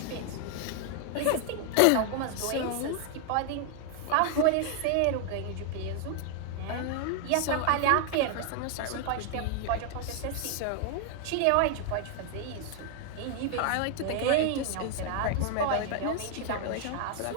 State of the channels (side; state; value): both; different; correlation 0.00